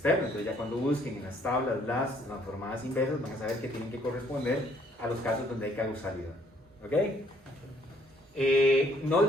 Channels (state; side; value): normal; both; correlation 0.65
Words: Entonces ya cuando busquen en las tablas las transformadas inversas van a saber que tienen que corresponder a los casos donde hay causalidad. ¿Ok? No